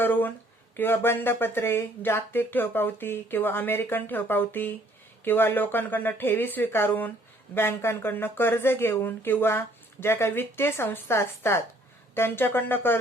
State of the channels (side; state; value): both; normal; correlation 0.61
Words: किंवा बंधपत्रे, जागतिक ठेव पावती किंवा अमेरिकन ठेव पावती किंवा लोकांकडून ठेवी स्वीकारून बँकांकडून कर्ज घेऊन किंवा ज्या काही वित्तीय संस्था असतात त्यांच्याकडून